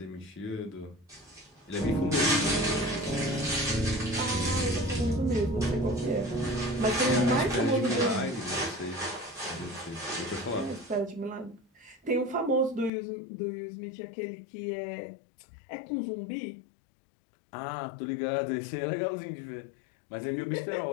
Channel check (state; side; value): drops out; right; at 12.9 s